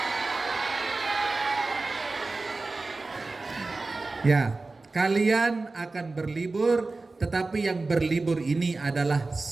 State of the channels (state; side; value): quieter; left; 3.5 dB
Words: Ya, kalian akan berlibur, tetapi yang berlibur ini adalah